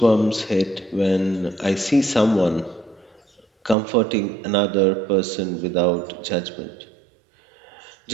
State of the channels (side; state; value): left; drops out; at 3.8 s